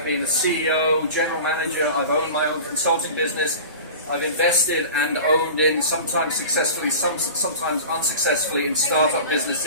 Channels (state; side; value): inverted; both; correlation -0.36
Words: been a CEO, general manager. I've owned my own consulting business. I've invested and owned in, sometimes successfully, sometimes unsuccessfully, in startup